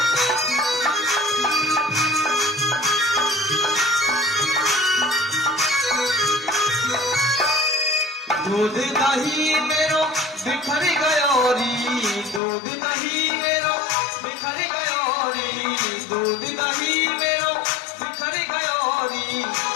दूध दही मेरो बिखर गयो री, दूध दही मेरो बिखर गयो री, दूध दही मेरो बिखर गयो री,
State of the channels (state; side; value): drops out; right; at 12.4 s